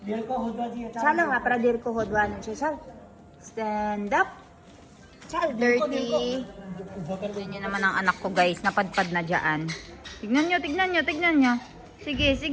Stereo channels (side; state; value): both; identical; correlation 1.00